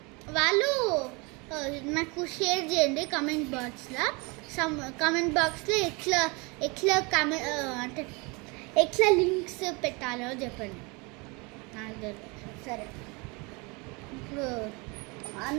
వాళ్ళు నాకు షేర్ చేయండి కమెంట్ బాక్స్లో అంటే ఎట్లా లింక్స్ పెట్టాలో చెప్పండి. సరే ఇప్పుడు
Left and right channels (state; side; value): quieter; left; 28.4 dB